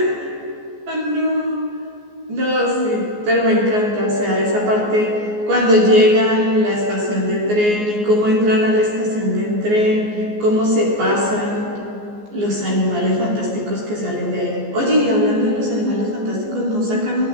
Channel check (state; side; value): late; left; 14 ms